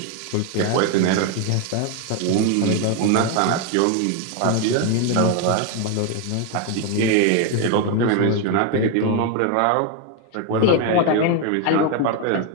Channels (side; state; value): both; different; correlation 0.01